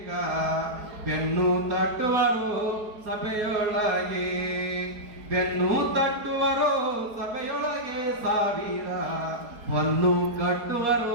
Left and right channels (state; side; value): late; left; 4.7 ms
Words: ಬೆನ್ನು ತಟ್ಟುವರು ಸಭೆಯೊಳಗೆ, ಬೆನ್ನು ತಟ್ಟುವರು ಸಭೆಯೊಳಗೆ ಸಾವಿರ, ಹೊನ್ನು